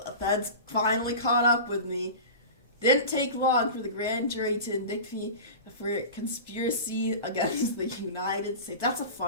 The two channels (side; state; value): both; inverted; correlation -0.31